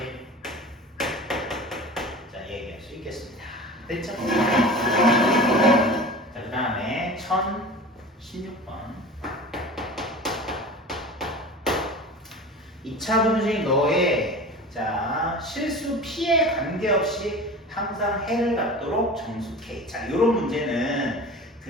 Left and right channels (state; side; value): normal; both; correlation 0.36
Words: 자, 얘기할 수 있겠습니다. 됐죠? 자, 그 다음에 1016번. 2차 분식 너의 자 실수 P에 관계없이 항상 해를 갖도록 정수K. 자, 이런 문제는